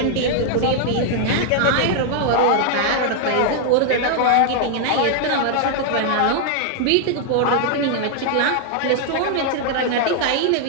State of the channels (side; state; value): both; different; correlation 0.00